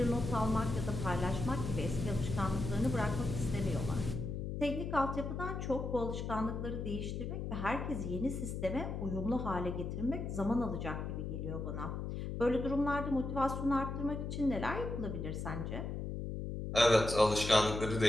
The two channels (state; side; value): noise; left; hum, 4 dB below the sound